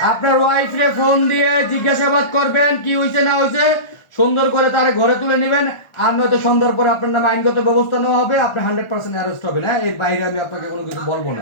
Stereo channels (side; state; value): right; late; 1.4 ms